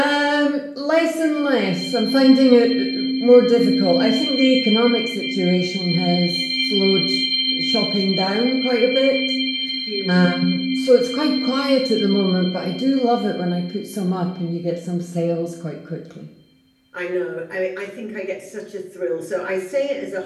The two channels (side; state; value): both; identical; correlation 1.00